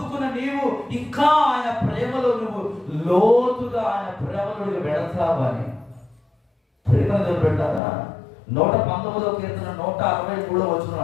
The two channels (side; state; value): right; drops out; at 7.8 s